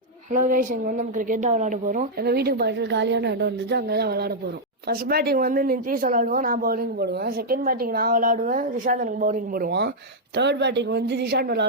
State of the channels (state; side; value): normal; both; correlation -0.05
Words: Hello guys, இங்கே வந்து நம்ம கிரிக்கெட் தான் விளையாட போகிறோம். எங்கள் வீட்டுக்கு பக்கத்தில் காலியான இடம் இருந்துச்சு, அங்கே தான் விளையாட போகிறோம். ஃபர்ஸ்ட் பேட்டிங் வந்து நிதிஷ் விளையாடுவோம், நான் பவுலிங் போடுவேன். செகண்ட் பேட்டிங் நான் விளையாடுவேன், திஷாந்த் எனக்கு பவுலிங் போடுவான். தேர்ட் பேட்டிங் வந்து திஷாந்த்